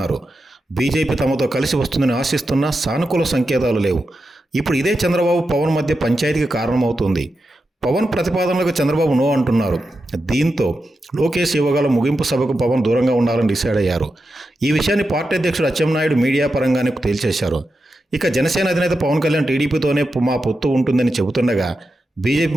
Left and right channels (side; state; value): both; normal; correlation 0.89